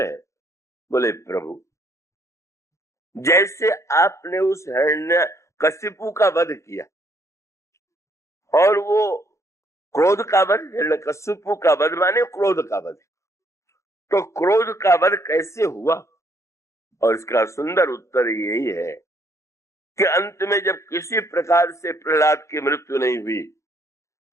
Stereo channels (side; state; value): right; late; 0.14 ms